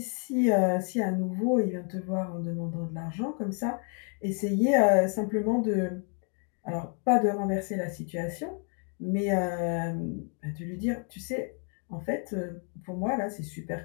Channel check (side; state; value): right; quieter; 37.0 dB